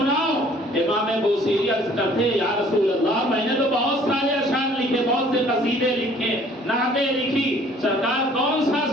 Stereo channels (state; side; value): normal; both; correlation 0.55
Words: امام بوسیری عرض کرتے یا رسول اللہ میں نے تو بہت سارے اشعار لکھے، بہت سے قصیدے لکھے، نعتیں لکھی، سرکار کون سا